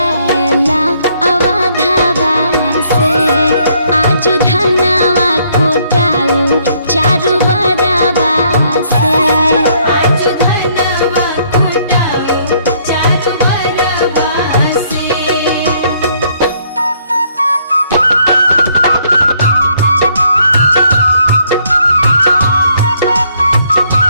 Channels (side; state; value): both; inverted; correlation -0.68